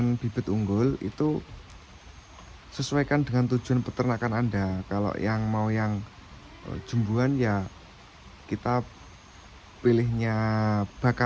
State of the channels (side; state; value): both; identical; correlation 1.00